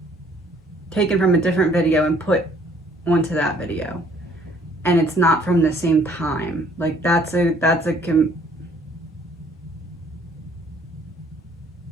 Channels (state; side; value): normal; both; correlation 0.60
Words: taken from a different video and put onto that video. And it's not from the same time. Like how do